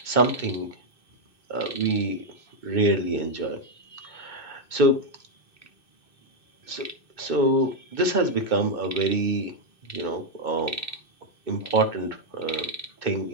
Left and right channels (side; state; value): right; late; 2.6 ms